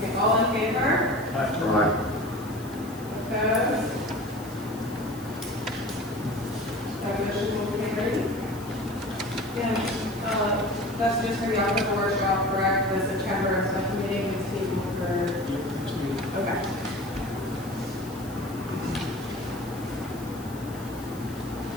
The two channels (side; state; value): left; noise; hiss, 19 dB below the sound